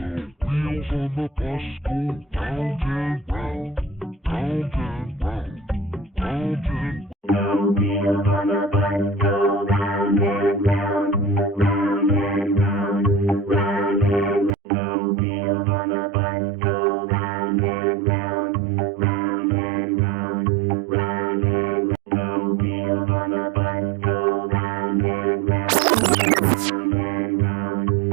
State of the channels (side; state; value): left; drops out; at 14.5 s